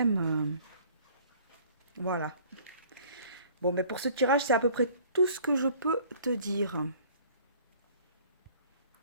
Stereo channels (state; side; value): inverted; both; correlation -0.53